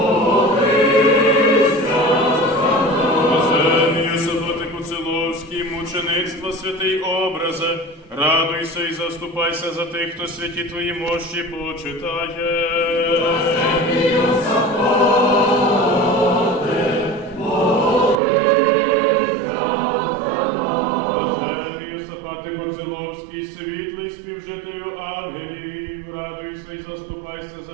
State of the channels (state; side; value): drops out; left; at 18.2 s